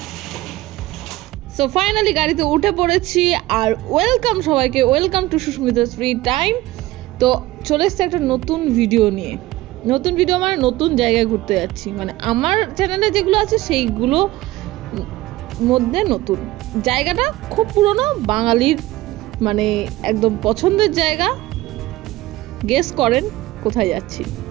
সো ফাইনালি গাড়িতে উঠে পড়েছি আর ওয়েলকাম সবাইকে, welcome to Susmita's free time. তো চলে এসছে একটা নতুন ভিডিও নিয়ে। নতুন ভিডিও মানে নতুন জায়গায় ঘুরতে যাচ্ছি, মানে আমার চ্যানেলে যেগুলো আছে সেইগুলো মধ্যে নতুন জায়গাটা খুব পুরনো, বাঙালির মানে একদম পছন্দের জায়গা। গেস করেন কোথায় যাচ্ছি।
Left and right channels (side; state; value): left; quieter; 17.5 dB